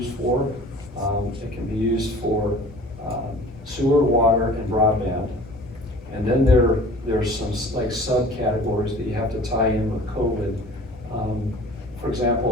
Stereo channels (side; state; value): both; normal; correlation 0.46